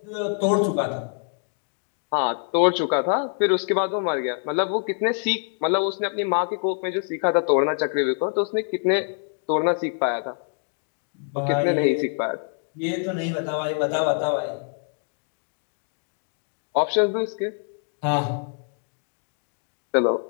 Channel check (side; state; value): right; silent; 62 dB below the other